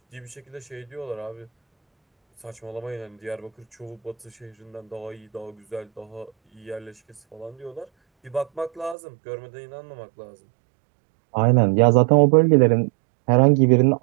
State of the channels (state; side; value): drops out; left; at 9.0 s